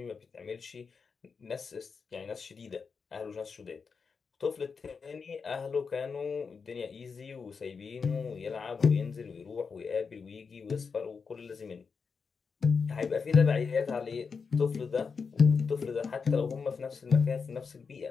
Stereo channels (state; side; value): quieter; right; 5.4 dB